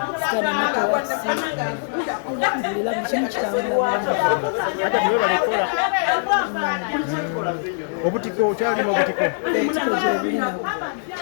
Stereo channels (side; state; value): right; silent; digital silence